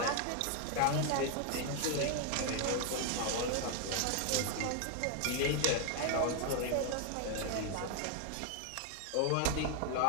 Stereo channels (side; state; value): both; different; correlation 0.01